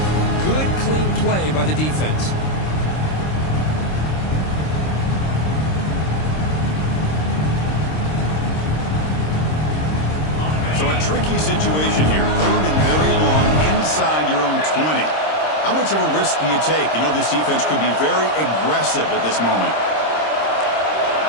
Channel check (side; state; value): right; late; 26 ms